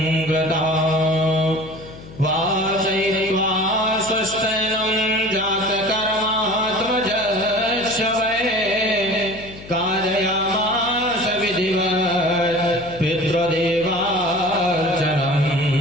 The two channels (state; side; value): noise; left; hum, 17 dB below the sound